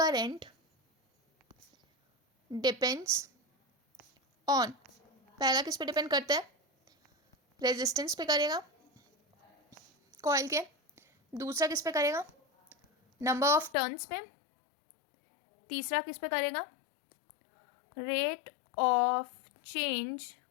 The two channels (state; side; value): drops out; right; at 13.7 s